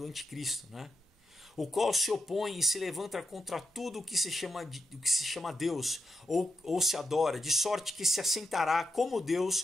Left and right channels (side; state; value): both; normal; correlation 0.85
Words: anticristo, né? O qual se opõe e se levanta contra tudo o que se chama Deus ou se adora, de sorte que se assentará como